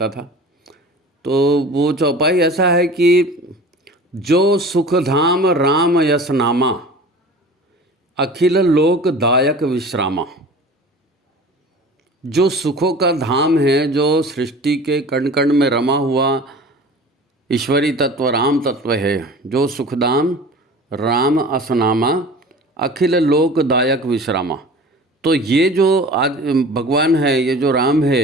था। तो वो चौपाई ऐसा है कि जो सुखधाम राम यस नामा, अखिल लोक दायक विश्रामा। जो सुखों का धाम है, जो सृष्टि के कण कण में रमा हुआ ईश्वरी तत्व राम तत्व है, जो सुखदाम राम असनामा, अखिल लोक दायक विश्रामा। तो ये जो आज भगवान है, ये जो राम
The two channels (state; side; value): normal; both; correlation 0.40